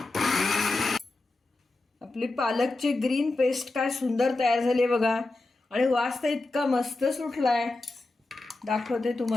आपली पालकची ग्रीन पेस्ट काय सुंदर तयार झाली बघा, आणि वास तर इतका मस्त सुटलाय, दाखवते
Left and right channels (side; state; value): right; quieter; 3.1 dB